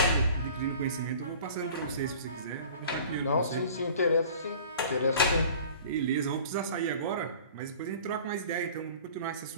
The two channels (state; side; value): inverted; both; correlation -0.45